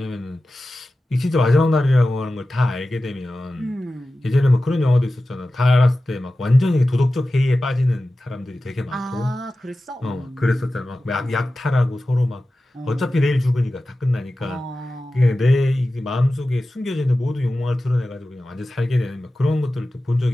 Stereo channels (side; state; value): both; normal; correlation 0.95